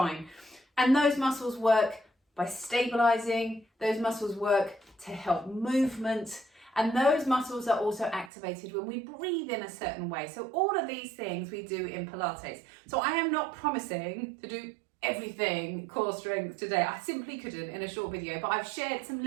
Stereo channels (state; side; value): drops out; left; at 8.3 s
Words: And those muscles work by stabilizing, those muscles work to help movement, and those muscles are also activated when we breathe in a certain way. So all of these things we do in Pilates. So I am not promising to do everything core strength today. I simply couldn't in a short video, but I've shared some